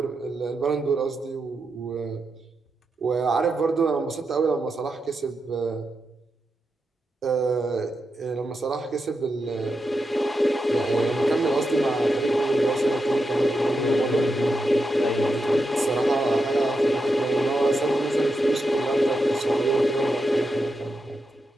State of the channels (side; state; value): both; normal; correlation 0.86